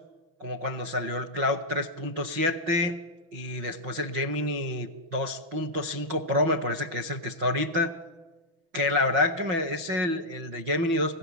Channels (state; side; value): late; left; 6.0 ms